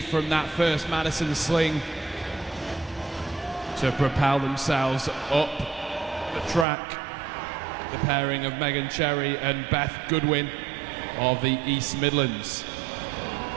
from that first Madison sling to propel themselves up the track. The pairing of Megan Cherry and Beth Goodwin of the East Midlands.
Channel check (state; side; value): drops out; left; at 6.7 s